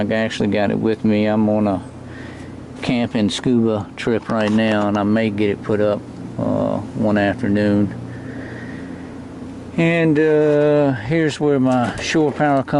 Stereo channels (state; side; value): identical; both; correlation 1.00